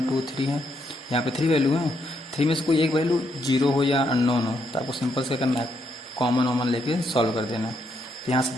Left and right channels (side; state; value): both; normal; correlation 0.77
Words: 2 3 है, यहाँ पे 3 वैल्यू है, 3 में से कोई एक वैल्यू 0 हो या अननोन हो, तो आपको सिंपल से करना है, कॉमन लेके सॉल्व कर देना। तो यहाँ से